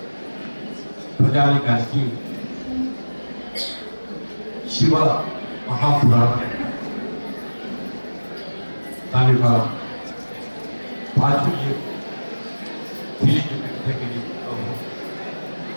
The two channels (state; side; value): inverted; both; correlation -1.00